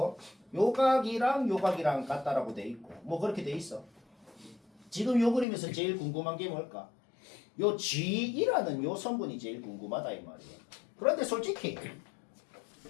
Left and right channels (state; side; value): drops out; right; at 5.5 s